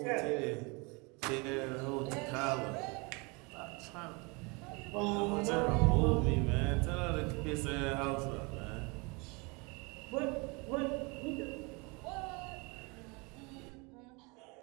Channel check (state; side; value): quieter; left; 28.9 dB